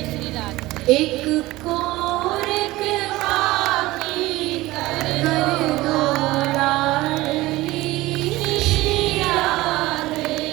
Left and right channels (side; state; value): left; quieter; 18.6 dB